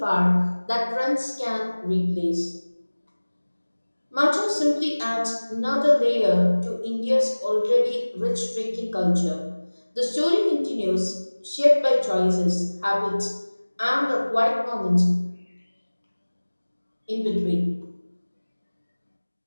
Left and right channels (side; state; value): both; inverted; correlation -1.00